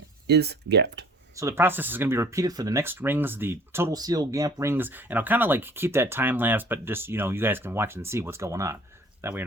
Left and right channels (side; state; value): both; normal; correlation 0.52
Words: is gapped. So the process is going to be repeated for the next rings, the total seal gap rings, and I'll kind of like keep that time lapse, but just, you know, you guys can watch and see what's going on. That way you're